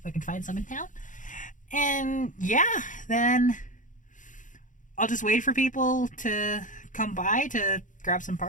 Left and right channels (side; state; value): right; late; 0.37 ms